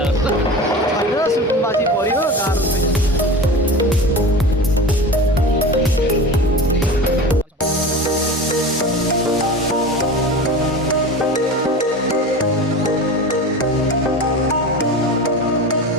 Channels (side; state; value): both; normal; correlation 0.32